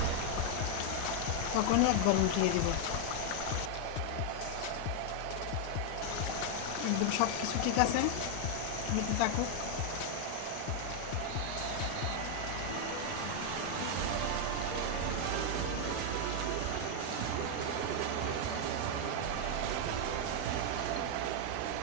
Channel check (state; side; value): different; both; correlation 0.00